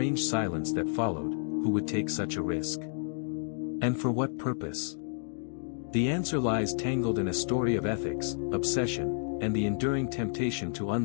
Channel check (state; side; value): silent; right; digital silence